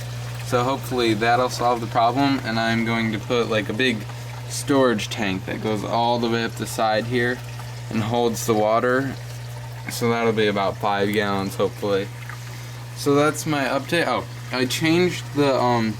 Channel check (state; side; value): identical; both; correlation 1.00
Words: So hopefully that'll solve the problem, and I'm going to put like a big storage tank that goes all the way up the side here and holds the water. So that'll be about 5 gallons hopefully. So that's my update. Oh, I changed the